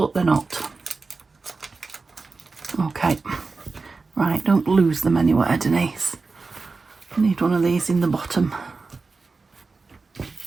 they're not. Okay. Right, don't lose them anywhere, Denise. I need one of these in the bottom.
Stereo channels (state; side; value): quieter; left; 4.1 dB